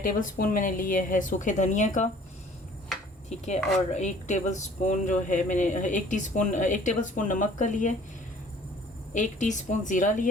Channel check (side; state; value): both; normal; correlation 0.53